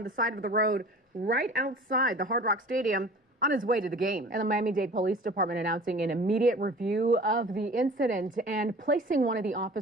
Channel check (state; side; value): normal; both; correlation 0.43